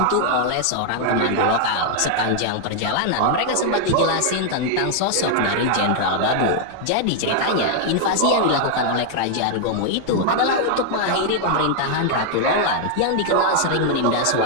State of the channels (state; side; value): different; both; correlation 0.00